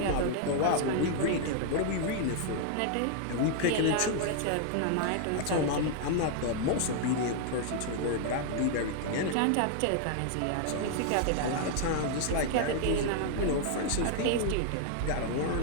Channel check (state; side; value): different; both; correlation 0.00